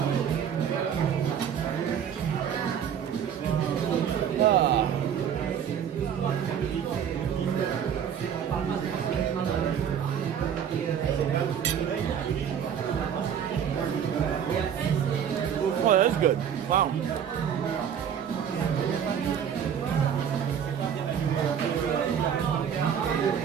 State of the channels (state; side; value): quieter; left; 8.5 dB